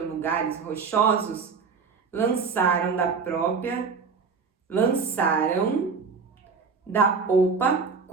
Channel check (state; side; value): quieter; left; 5.2 dB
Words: rochosos, lançaram da popa